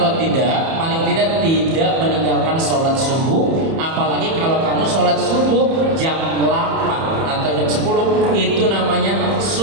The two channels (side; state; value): left; late; 31 ms